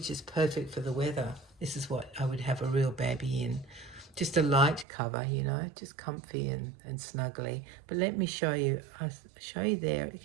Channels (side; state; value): left; drops out; at 4.9 s